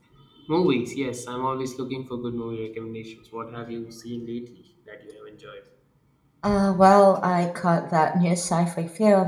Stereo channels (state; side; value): identical; both; correlation 1.00